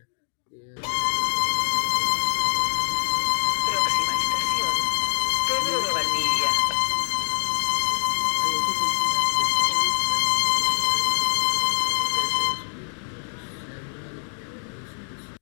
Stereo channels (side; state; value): right; silent; 62 dB below the other